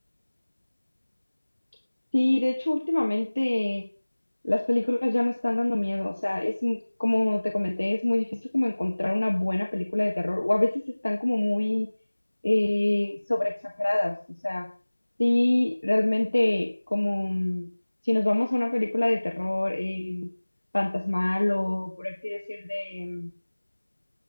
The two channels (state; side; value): inverted; both; correlation -1.00